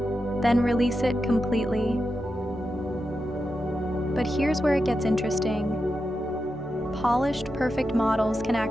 then release it completely. But here's where it gets interesting. Polished, perfect models can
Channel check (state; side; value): normal; both; correlation 0.89